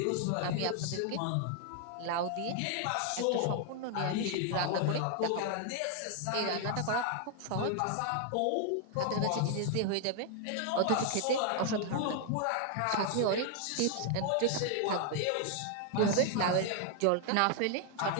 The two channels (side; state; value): both; different; correlation 0.00